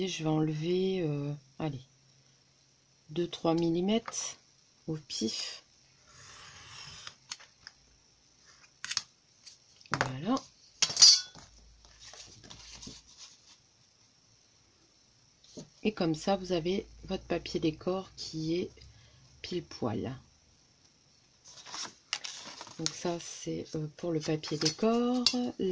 je vais enlever, allez, 2-3 mm au pif. Voilà. Et comme ça, vous avez votre papier décor qui est pile poil. Donc ça, c'est pour le papier décor.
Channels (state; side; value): identical; both; correlation 1.00